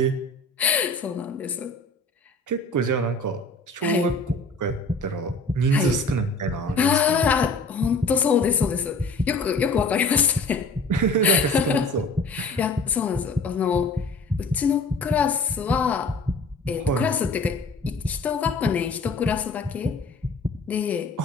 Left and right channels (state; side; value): quieter; right; 3.1 dB